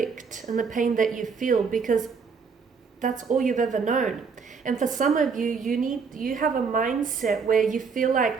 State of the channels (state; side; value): quieter; left; 5.5 dB